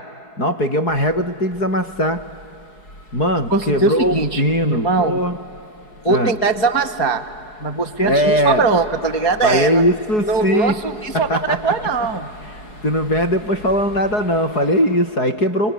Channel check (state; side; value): late; right; 4.7 ms